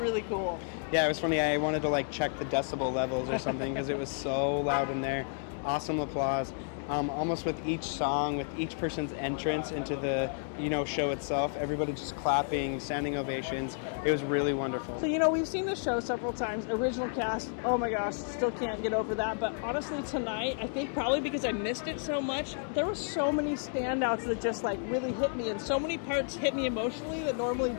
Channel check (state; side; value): silent; right; digital silence